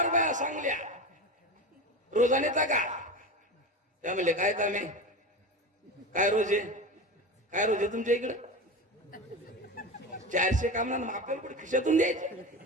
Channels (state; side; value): normal; both; correlation 0.25